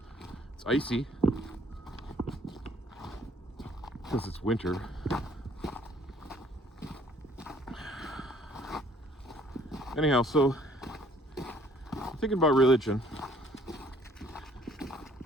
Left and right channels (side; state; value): both; normal; correlation 0.59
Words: It's icy because it's winter. Anyhow, so I'm thinking about religion.